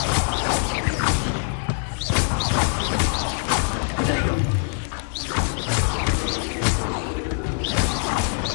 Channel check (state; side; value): silent; right; 56 dB below the other